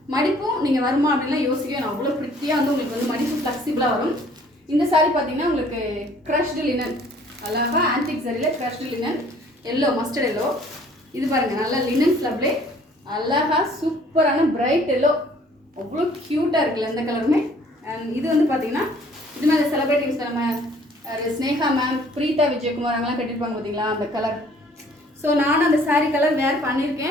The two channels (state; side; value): normal; both; correlation 0.57